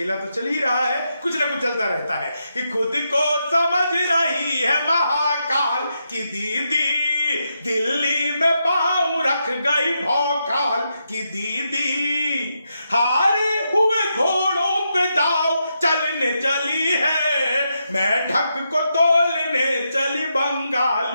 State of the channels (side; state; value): both; inverted; correlation -0.83